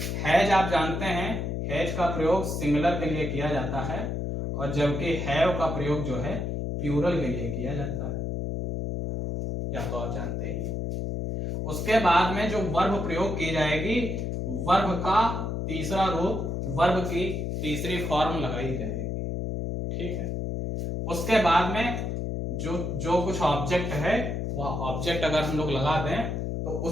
हैज आप जानते हैं, हैज का प्रयोग सिंगुलर के लिए किया जाता है, और जबकि हैव का प्रयोग जो है प्लूरल के लिए किया जाता है, या तो आप जानते ही। उसके बाद में जो वर्ब प्रयोग की जाएगी, वर्ब का तीसरा रूप, वर्ब की तीसरी फॉर्म लगाई जाएगी। ठीक है, उसके बाद में जो कुछ ऑब्जेक्ट है, वह ऑब्जेक्ट अगर हम लोग लगा दें तो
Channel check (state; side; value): noise; left; hum, 2 dB below the sound